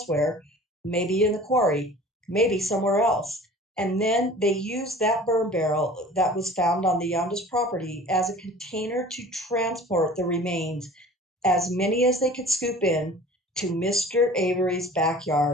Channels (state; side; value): normal; both; correlation 0.44